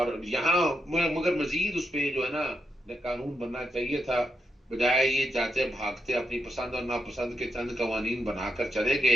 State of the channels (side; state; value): both; normal; correlation 0.82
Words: यहाँ मगर मजीद उस पर जो है ना कानून बनना चाहिए था, बजाय ये जाते भागते अपनी पसंद और नापसंद के चंद कवानीन बनाकर चले गए